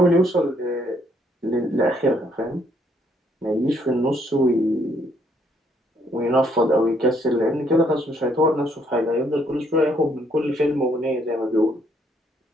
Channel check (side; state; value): both; normal; correlation 0.69